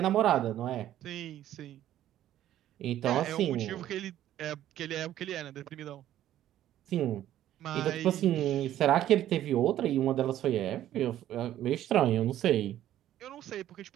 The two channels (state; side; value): quieter; left; 12.4 dB